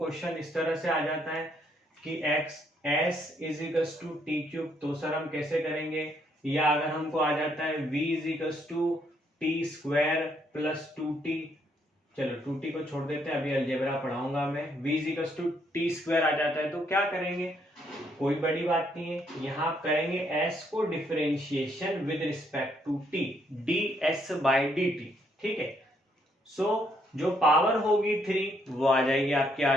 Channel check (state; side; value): normal; both; correlation 0.71